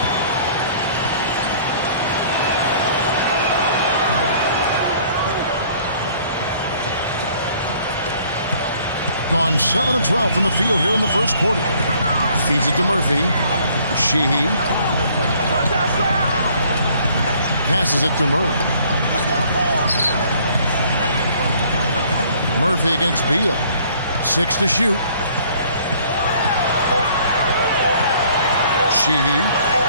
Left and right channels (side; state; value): both; inverted; correlation -0.58